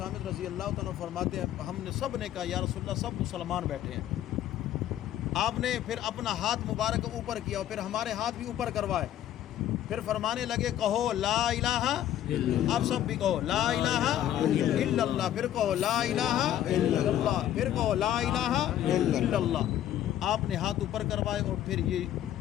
رضی اللہ تعالیٰ فرماتے ہیں ہم نے سب نے کہا یا رسول اللہ سب مسلمان بیٹھے ہیں. آپ نے پھر اپنا ہاتھ مبارک اوپر کیا اور پھر ہمارے ہاتھ بھی اوپر کروائے، پھر فرمانے لگے کہو لا الہ، آپ سب بھی کہو لا الہ الا اللہ، پھر کہو لا الہ الا اللہ، پھر کہو لا الہ الا اللہ. آپ نے ہاتھ اوپر کروائے اور پھر یہ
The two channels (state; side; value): quieter; right; 11.9 dB